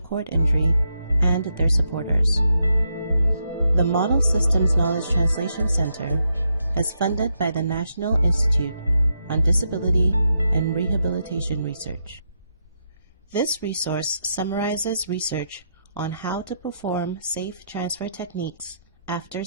cord injury and their supporters. The Model Systems Knowledge Translation Center is funded by the National Institute on Disability and Rehabilitation Research. This resource summarizes research on how to perform safe transfer techniques after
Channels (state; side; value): inverted; both; correlation -0.81